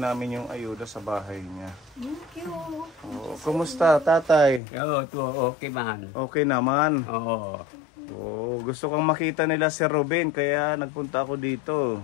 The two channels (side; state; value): right; drops out; at 4.6 s